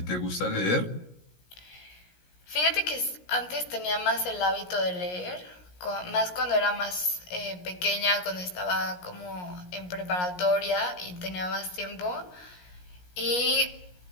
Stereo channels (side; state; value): right; late; 17 ms